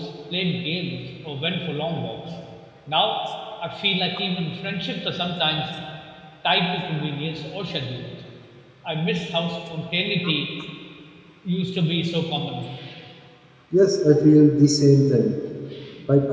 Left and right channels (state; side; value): identical; both; correlation 1.00